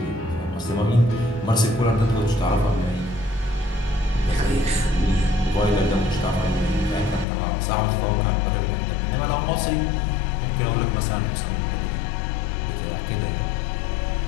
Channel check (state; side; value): drops out; right; at 7.2 s